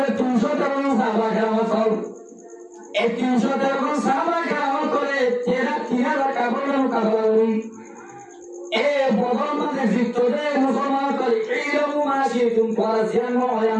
313 সাহাবা কেরাম এই 313 সাহাবা কেরাম করে 3000 কাপড়ের মুকাবালা করি এ বদল মানে জিততে মুসলমান করে ইলমু মাসিতুম পরাজিয়ান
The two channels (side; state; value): both; identical; correlation 1.00